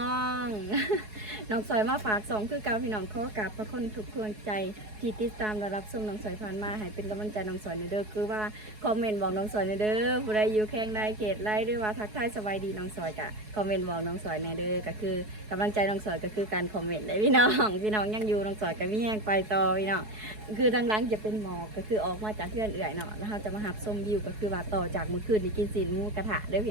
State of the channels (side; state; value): left; late; 4.7 ms